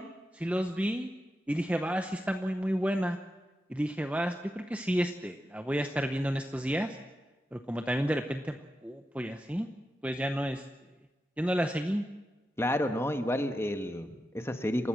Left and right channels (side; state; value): both; normal; correlation 0.89